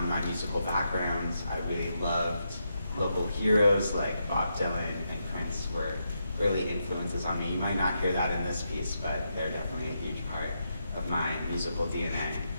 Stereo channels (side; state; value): both; inverted; correlation -0.82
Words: my musical background. I really loved local heroes like Bob Dylan and Prince were early influences on me. You might not hear that in this piece, but they're definitely a huge part of my musical DNA.